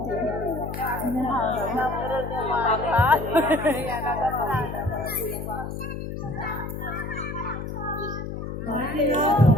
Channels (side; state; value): left; noise; hum, 6 dB below the sound